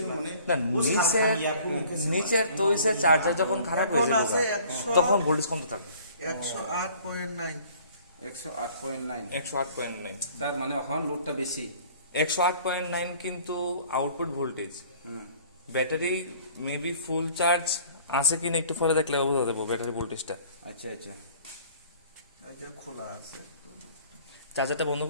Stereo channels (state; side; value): inverted; both; correlation -0.53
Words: মানে না নিচের তৈরিসের চার্জার যখন খারাপ হয়ে এখন আছে যাবে তখন ভোল্টেজ কমতে থাকবে 108.9 108.9 108.9 স্যার মানে ওখানে লোডটা বেশি 108.9 কিন্তু আউটপুট ভোল্টেজ হুম ব্যাটারি মেবি ফুল চার্জ আছে কিনা একটু পরে দেখলে বোঝা যাবে ব্যাটারি ভোল্টেজটা আচ্ছা আচ্ছা এটা খোলা আছে চার্জারটা বন্ধ